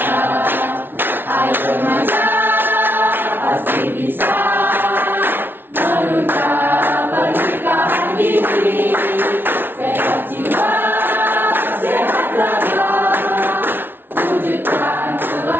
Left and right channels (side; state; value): left; late; 0.10 ms